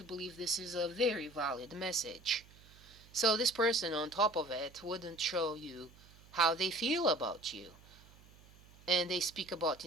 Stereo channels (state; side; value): noise; right; hum, 24 dB below the sound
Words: believe this is a very valid message. So this person on top of it wouldn't show you how they feel about you. And they speak about